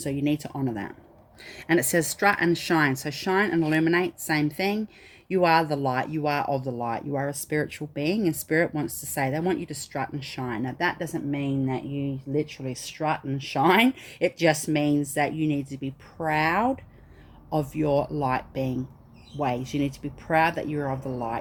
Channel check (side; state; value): both; identical; correlation 1.00